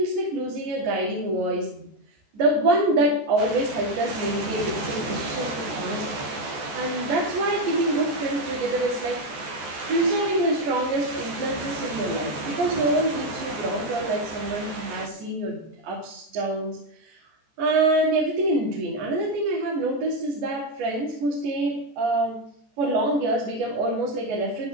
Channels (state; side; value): late; left; 14 ms